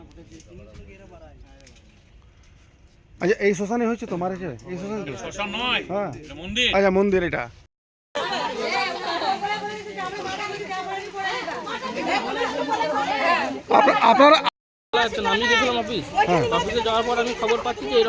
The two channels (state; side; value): identical; both; correlation 1.00